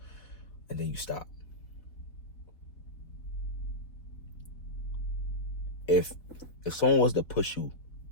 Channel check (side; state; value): right; late; 4.0 ms